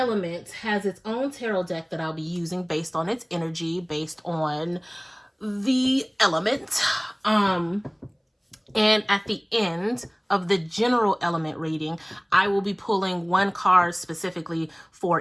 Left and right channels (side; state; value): both; identical; correlation 1.00